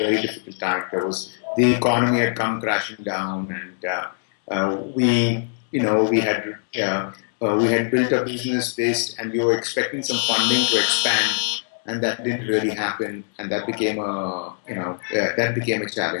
difficult time. The economy had come crashing down, and we had built a business based, and we were expecting some funding to expand, and that didn't really happen, and that became a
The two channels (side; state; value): right; silent; digital silence